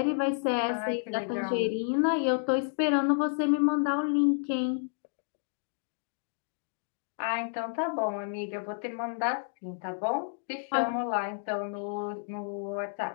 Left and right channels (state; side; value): silent; right; digital silence